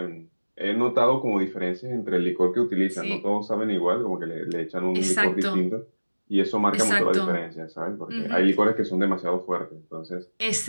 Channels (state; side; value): inverted; both; correlation -1.00